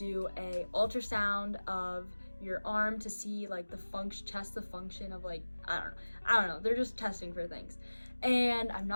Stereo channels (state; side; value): inverted; both; correlation -1.00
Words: a ultrasound of your arm to see like the test the function of like, I don't know. They're just testing for things. And I'm